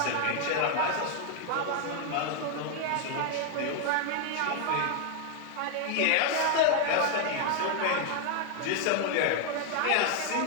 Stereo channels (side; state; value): both; different; correlation 0.00